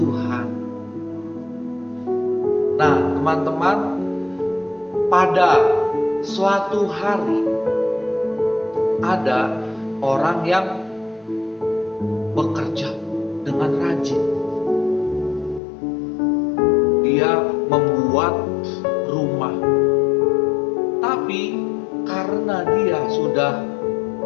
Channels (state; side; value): drops out; right; at 15.6 s